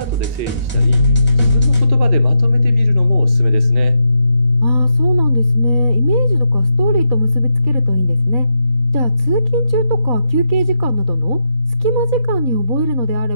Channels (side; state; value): left; late; 4.1 ms